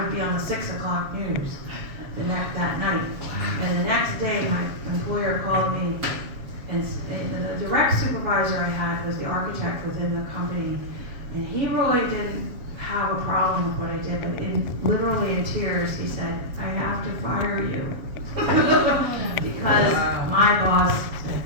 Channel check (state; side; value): late; left; 7.1 ms